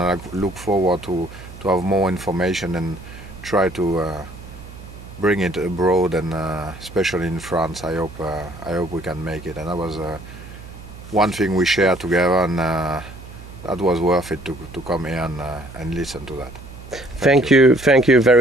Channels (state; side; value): noise; right; hum, 16 dB below the sound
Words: I look forward to have more information and try to bring it abroad, and especially in France. I hope we can make it. And that was one thing we shared together, and that was worth it to come here and listen to that. Thank you